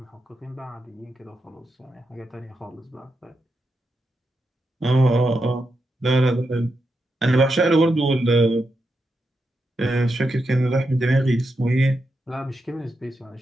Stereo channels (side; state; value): both; normal; correlation 0.86